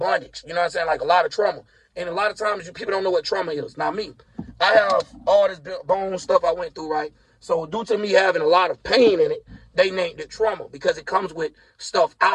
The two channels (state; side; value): identical; both; correlation 1.00